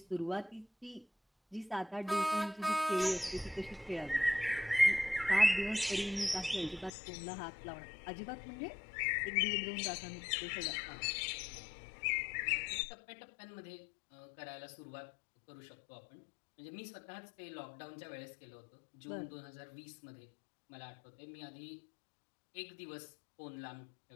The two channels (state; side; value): drops out; right; at 6.9 s